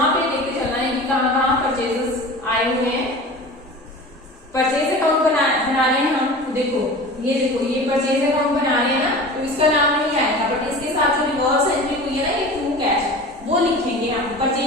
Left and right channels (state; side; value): normal; both; correlation 0.36